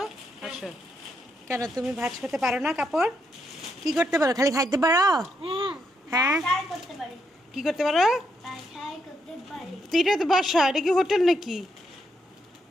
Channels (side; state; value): both; normal; correlation 0.79